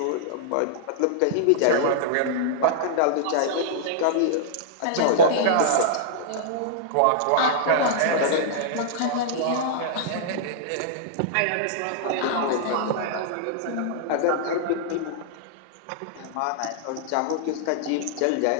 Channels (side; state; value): both; different; correlation -0.02